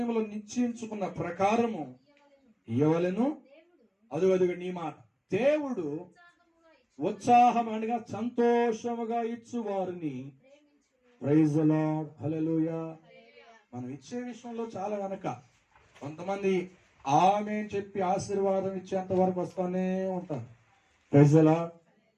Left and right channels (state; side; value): identical; both; correlation 1.00